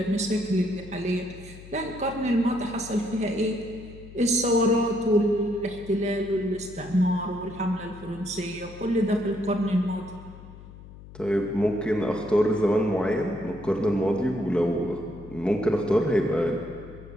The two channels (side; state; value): left; noise; hum, 17 dB below the sound